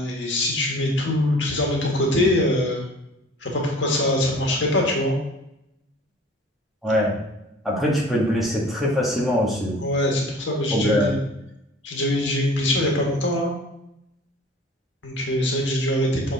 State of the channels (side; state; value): both; normal; correlation 0.46